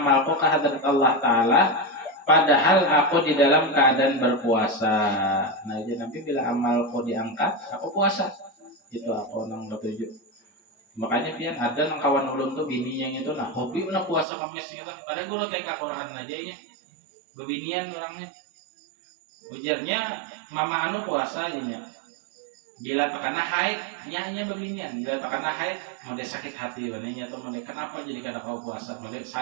kehadrat Allah Ta'ala padahal aku di dalam keadaan berpuasa. Nah jadi Nabi bila amalku diangkat, aku puasa. Itu aku nang ketujuh. Makanya pian ada nang kawan ulun tuh bini yang itu nah hobi na puasa Kamis gitu. Padahal guru TK Quran aja ya. Bebinian orangnya. Ujarnya mama anu puasa ini. Bila takana haid, nya bebinian. Bila takana haid, mau dia sakit hati bananya tuh mau dia kenapa jadi kada kau puasa? Mau dia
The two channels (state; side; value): drops out; left; at 14.2 s